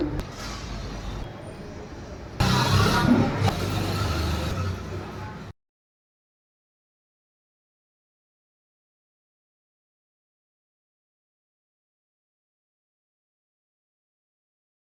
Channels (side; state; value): both; identical; correlation 1.00